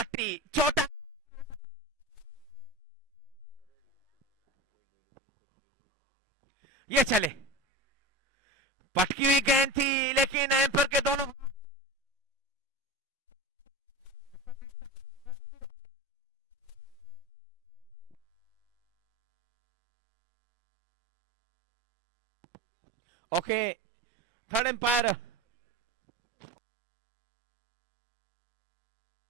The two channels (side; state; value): both; normal; correlation 0.28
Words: छोटा, ये चले, पटकी हुई गेंद थी लेकिन एम्पर के दोनों ओके, थर्ड एम्पायर।